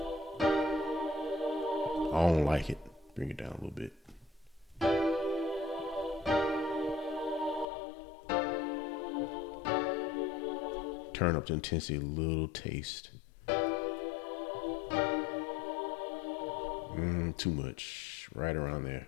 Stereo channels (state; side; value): drops out; right; at 7.7 s